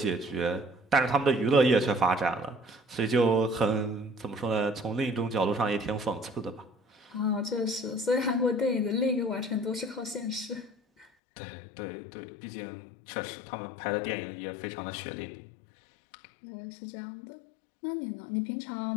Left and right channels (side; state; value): right; drops out; at 11.1 s